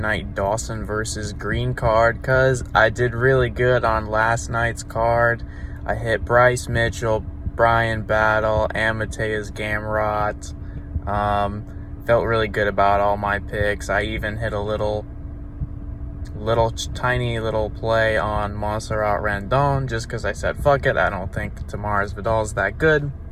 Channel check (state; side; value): identical; both; correlation 1.00